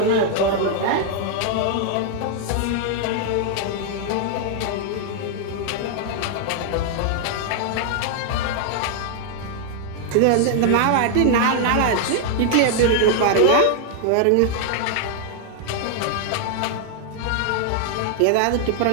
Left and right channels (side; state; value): both; different; correlation 0.00